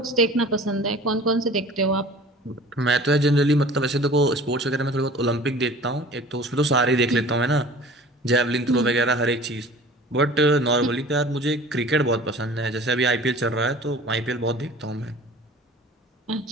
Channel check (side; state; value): both; normal; correlation 0.44